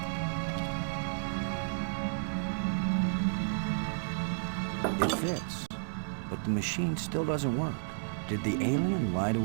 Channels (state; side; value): silent; left; digital silence